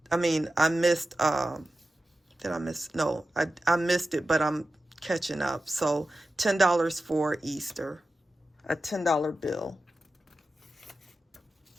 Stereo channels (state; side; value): normal; both; correlation 0.93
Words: I mean, I missed, did I miss? No, I missed it, but I'm catching up. So $10 for Easter, a $10 bill.